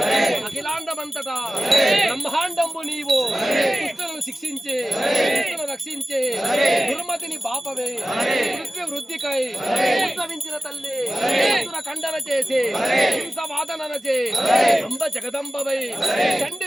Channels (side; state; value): both; normal; correlation 0.95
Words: అఖిలాండమంతటా బ్రహ్మాండంబు నీవు దుష్టులను శిక్షించి దుష్టులను రక్షించి దుర్మతిని బాపవే పృథ్వీ వృద్ధికై ఉద్భవించిన తల్లి దుష్టుల ఖండన చేసి హింసవాదనన చే అంబ జగదంబవై